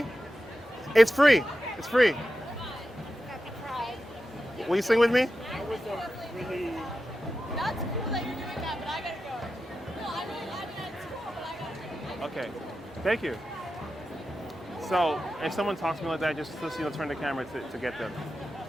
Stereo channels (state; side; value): normal; both; correlation 0.91